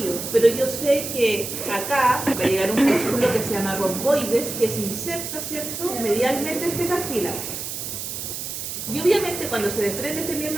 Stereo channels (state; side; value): noise; right; hiss, 6 dB below the sound